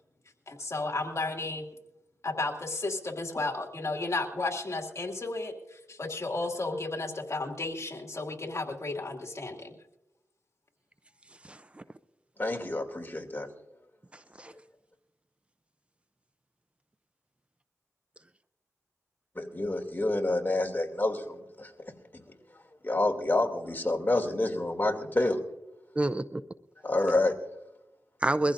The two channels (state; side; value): normal; both; correlation 0.83